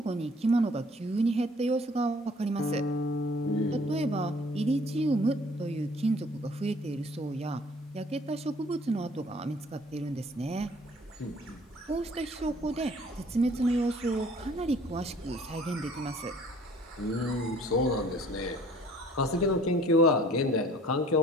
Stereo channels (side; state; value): both; normal; correlation 0.54